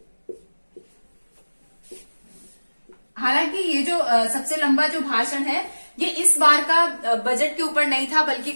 हालांकि ये जो सबसे लंबा जो भाषण है, ये इस बार का बजट के ऊपर नहीं था, बल्कि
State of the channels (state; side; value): inverted; both; correlation -1.00